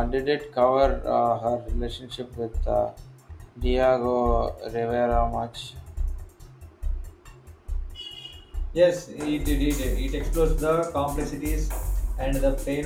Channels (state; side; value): identical; both; correlation 1.00